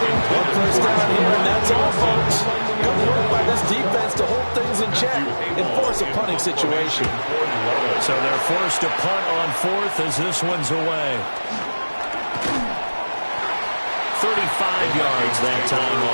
One 1st down here, and that's all, folks. Good work by this defense to hold things in check and force a punting situation. So they're forced to punt on 4th as this one's away. 35 yards that time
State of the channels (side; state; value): both; inverted; correlation -1.00